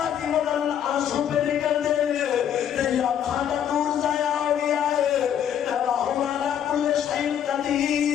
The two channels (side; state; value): right; quieter; 9.5 dB